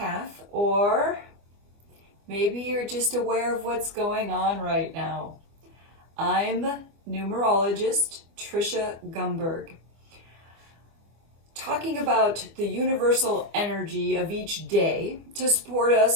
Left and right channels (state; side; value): late; left; 25 ms